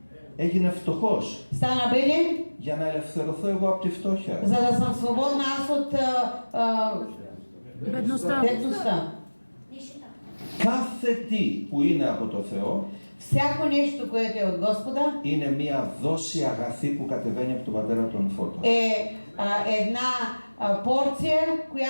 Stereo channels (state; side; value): inverted; both; correlation -1.00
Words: Έγινε φτωχός Стана беден, για να ελευθερωθώ εγώ από τη φτώχεια. за да съм свободна аз от бедността. Κάθε τι που είναι από το Θεό Всяко нещо, което е от Господа, είναι μια δόση αγαθή που κατεβαίνει από τον Πατέρα των Φώτων. една порция,